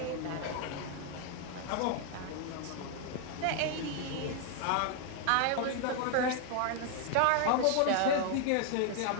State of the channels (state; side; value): different; both; correlation 0.00